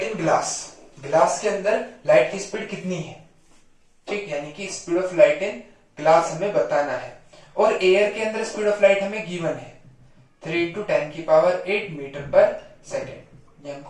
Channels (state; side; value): identical; both; correlation 1.00